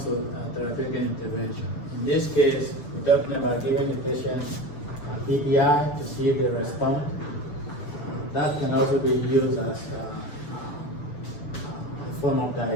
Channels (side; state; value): right; late; 6.9 ms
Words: to therapeutic intervention. In this case, we're talking about giving the patient a PPI to see if they respond. That can also be used as a form of